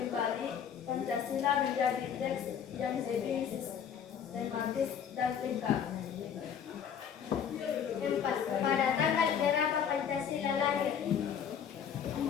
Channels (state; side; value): quieter; right; 8.1 dB